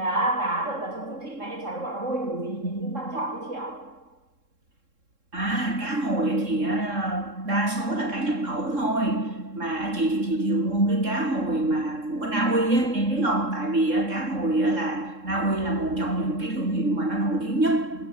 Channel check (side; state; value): left; late; 3.7 ms